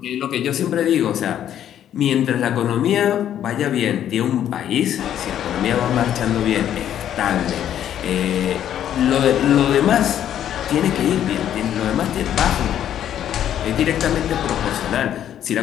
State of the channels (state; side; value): quieter; right; 10.5 dB